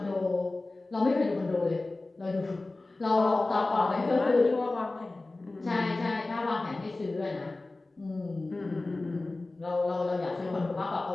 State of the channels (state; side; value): quieter; right; 3.1 dB